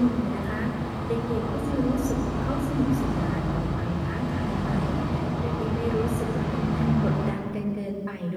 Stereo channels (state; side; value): identical; both; correlation 1.00